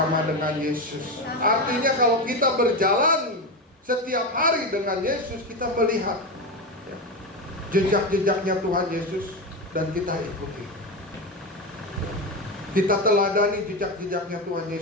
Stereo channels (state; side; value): normal; both; correlation 0.16